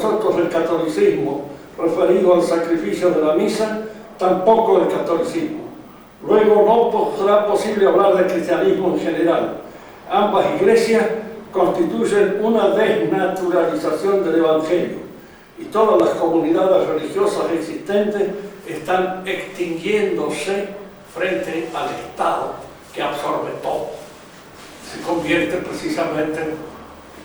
del catolicismo, referido al sacrificio de la misa, tampoco del catolicismo. Luego no será posible hablar de cristianismo en general. Ambas iglesias constituyen una desnaturalización del Evangelio y todas las comunidades religiosas existentes están extinguiéndose frente al Estado que absorbe todo. Se convierte precisamente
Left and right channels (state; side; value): identical; both; correlation 1.00